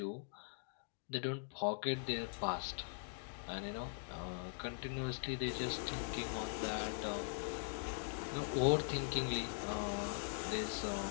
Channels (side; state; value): right; silent; digital silence